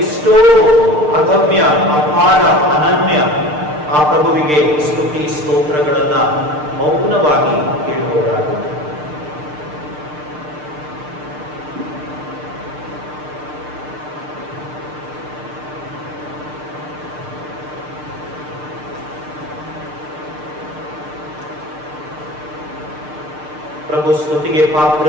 ಎಷ್ಟೋ ಅಗಮ್ಯ, ಅಪಾರ, ಅನನ್ಯ. ಆ ಪ್ರಭುವಿಗೆ ಸ್ತುತಿ ಸ್ತೋತ್ರಗಳನ್ನ ಮೌನವಾಗಿ ಹೇಳುವವರಾಗೋಣ. ಪ್ರಭು ಸ್ತುತಿಗೆ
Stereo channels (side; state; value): left; late; 6.6 ms